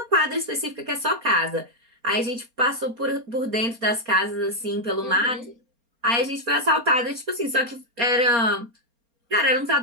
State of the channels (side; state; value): left; late; 4.2 ms